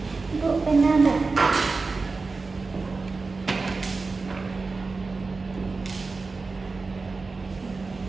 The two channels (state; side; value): quieter; left; 4.0 dB